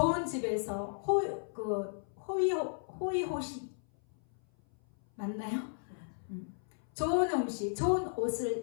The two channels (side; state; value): right; silent; 55 dB below the other